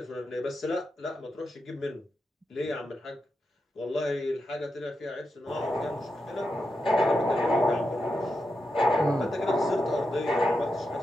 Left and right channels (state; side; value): normal; both; correlation 0.87